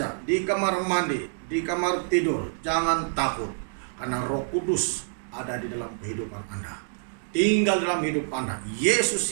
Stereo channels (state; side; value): silent; left; digital silence